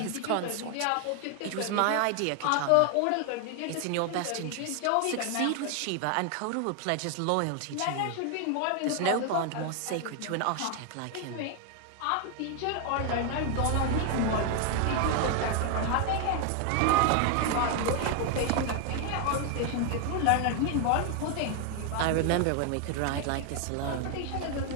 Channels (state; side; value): different; both; correlation 0.01